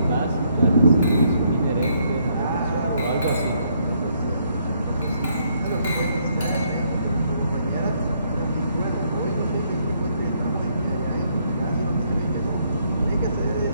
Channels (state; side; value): inverted; both; correlation -0.71